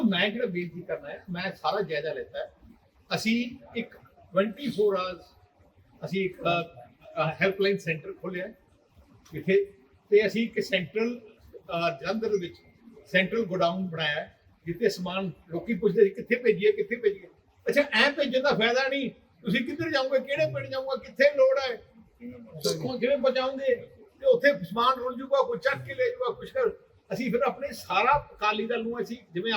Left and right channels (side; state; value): both; identical; correlation 1.00